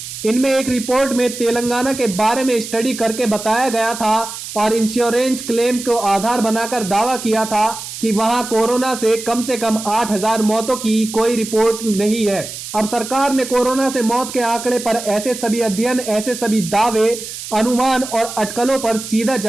इनमें एक रिपोर्ट में तेलंगाना के बारे में स्टडी करके बताया गया था और इंश्योरेंस क्लेम को आधार बनाकर दावा किया था कि वहां कोरोना से कम 8,000 मौतों की कोई रिपोर्ट नहीं है। अब सरकार ने कोरोना से मौत के आंकड़े पर ऐसे सभी अध्ययन, ऐसे सभी दावे, अनुमान और अटकलों पर सीधा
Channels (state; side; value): noise; right; hiss, 10 dB below the sound